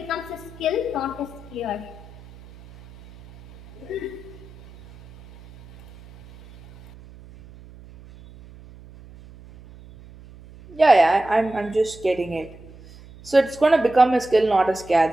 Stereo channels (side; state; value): right; noise; hum, 21 dB below the sound